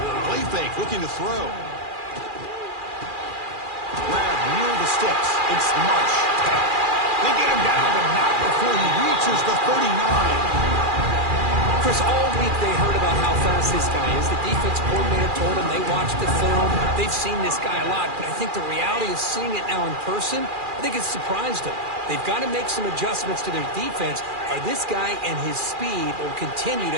Play fake, looking to throw. Sticks. It's Marsh. They get him down, but not before he reaches the 39. Chris, all week they heard about how fast this guy is. The defense coordinator told them they watched the film. They've seen this guy a lot, but I think the reality is seeing it now in person, I think it's surprised them. They've got to make some adjustments to their defense, or this guy and his speed will continue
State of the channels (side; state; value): left; late; 2.4 ms